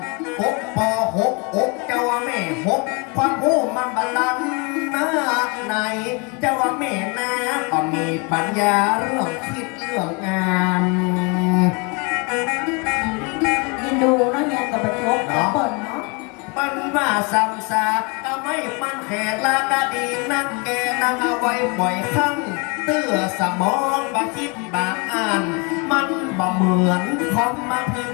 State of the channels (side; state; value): right; quieter; 31.4 dB